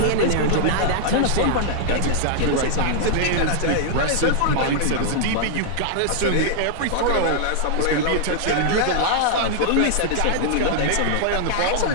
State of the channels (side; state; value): both; different; correlation 0.00